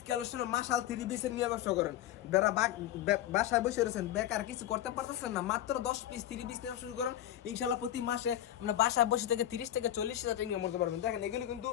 কালেকশনে মাশাল 3 পিসের নিয়ে ব্যবসা করেন, যারা বাসায় বসে রয়েছেন বেকার কিছু করতে পারতেছেন না, মাত্র 10 পিস 3 পিস নিয়ে শুরু করেন, ইনশাআল্লাহ প্রতি মাসে আমরা বাসায় বসে থেকে 30 থেকে 40 হাজার টাকা ইনকাম করতে পারবেন। দেখেন এগুলি কিন্তু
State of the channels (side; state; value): right; quieter; 12.3 dB